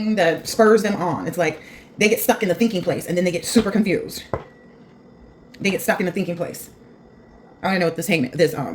that spurs them on, it's like they get stuck in the thinking place and then they get super confused. They get stuck in the thinking place. I don't even know what this King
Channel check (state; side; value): identical; both; correlation 1.00